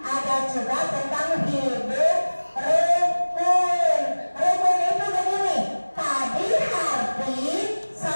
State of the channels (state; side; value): inverted; both; correlation -1.00